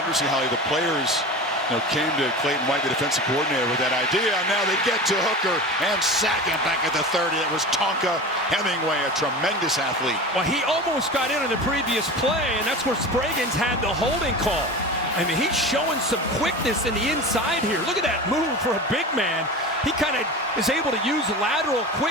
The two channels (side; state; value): both; normal; correlation 0.31